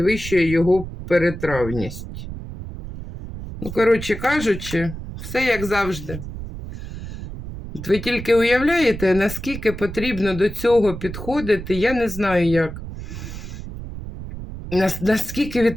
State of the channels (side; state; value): right; noise; rumble, 10 dB below the sound